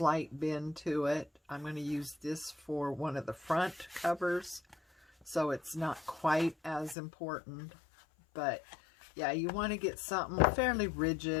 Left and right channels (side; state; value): right; drops out; at 7.0 s